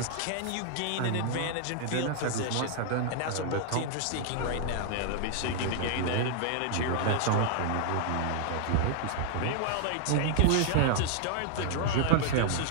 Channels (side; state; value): both; different; correlation -0.01